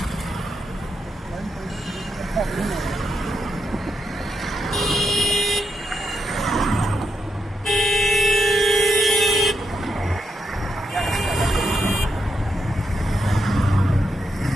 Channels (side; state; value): both; normal; correlation 0.83